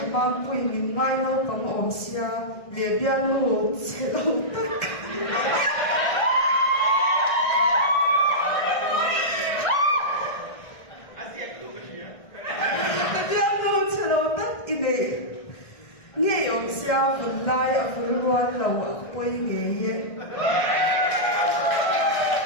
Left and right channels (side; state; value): right; late; 1.6 ms